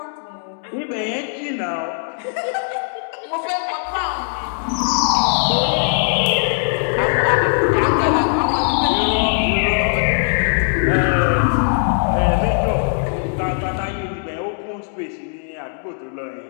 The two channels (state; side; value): silent; right; 60 dB below the other